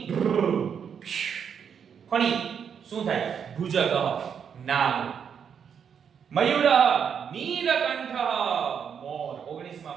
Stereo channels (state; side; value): quieter; left; 7.4 dB